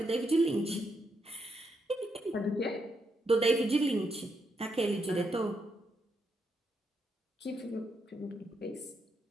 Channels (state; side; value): normal; both; correlation 0.80